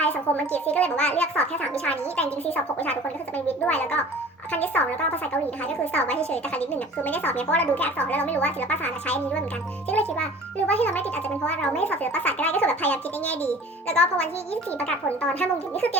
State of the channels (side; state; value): both; normal; correlation 0.45